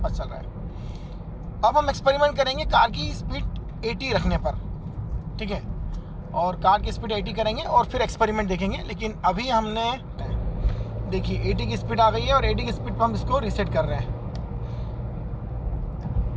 चल रहा है। अब हम एक्सपेरिमेंट करेंगे कार की स्पीड 80 रखने पर। ठीक है, और कार की स्पीड 80 करेंगे और फिर एक्सपेरिमेंट देखेंगे। लेकिन अभी हमने देखिए 80 की स्पीड आ गई है, और 80 की स्पीड पर हम इसको रीसेट कर रहे हैं।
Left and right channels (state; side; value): identical; both; correlation 1.00